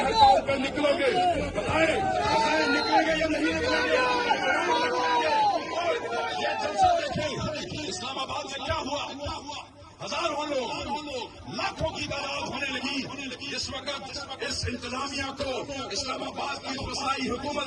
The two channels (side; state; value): both; identical; correlation 1.00